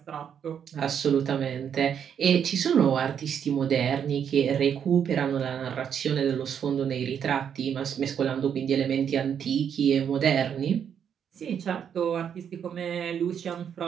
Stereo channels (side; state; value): left; quieter; 8.2 dB